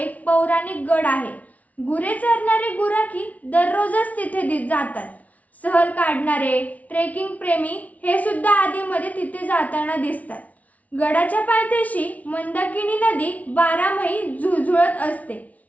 पौराणिक गड आहे. गुरे चरणारे गुराखी दररोजच तिथे जातात. सहल काढणारे ट्रेकिंग प्रेमी हे सुद्धा आधीमध्ये तिथे जाताना दिसतात. गडाच्या पायथ्याशी मंदाकिनी नदी 12 महिने झुळझुळत असते.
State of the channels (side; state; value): right; late; 0.070 ms